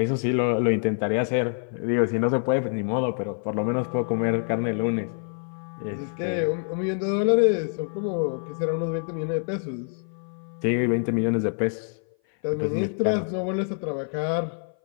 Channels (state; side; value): silent; right; 57 dB below the other